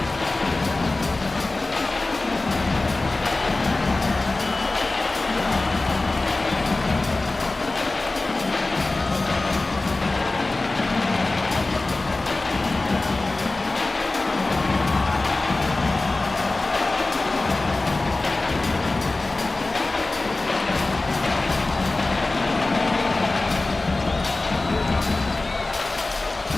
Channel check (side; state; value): right; quieter; 3.1 dB